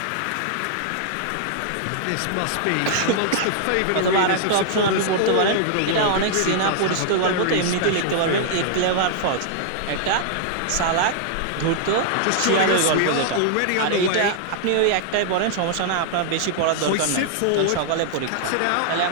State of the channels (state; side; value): different; both; correlation -0.01